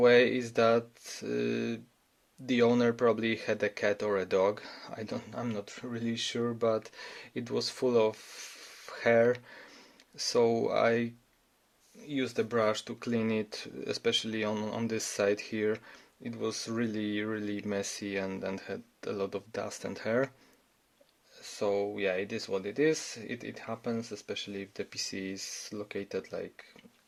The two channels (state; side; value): identical; both; correlation 1.00